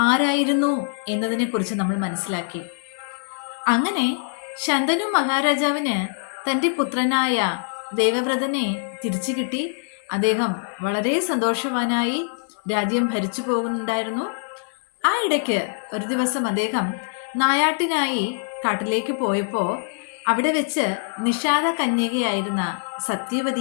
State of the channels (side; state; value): right; silent; 60 dB below the other